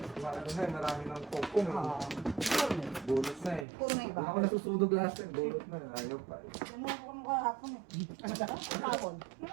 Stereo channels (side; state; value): left; drops out; at 3.7 s